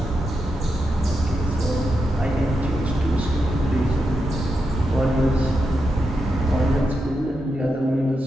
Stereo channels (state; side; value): normal; both; correlation 0.86